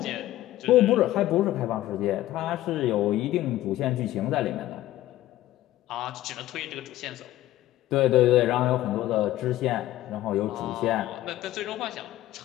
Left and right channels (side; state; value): right; quieter; 14.8 dB